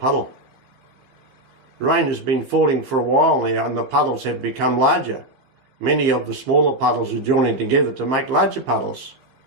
Rain has been falling for a while now, and the puddles have become larger. Many of the smaller puddles are joining together to make larger puddles.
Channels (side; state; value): left; late; 15 ms